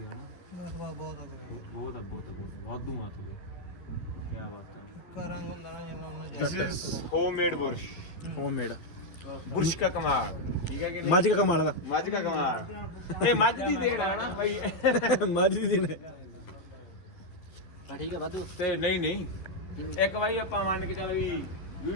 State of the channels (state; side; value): late; right; 11 ms